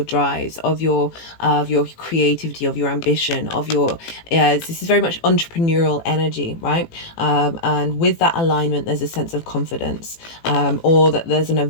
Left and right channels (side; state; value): right; late; 18 ms